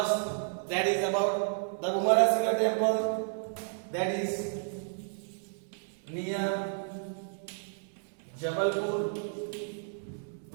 that is about the Bhumara Shiva temple, that is near Jabalpur.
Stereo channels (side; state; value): left; silent; digital silence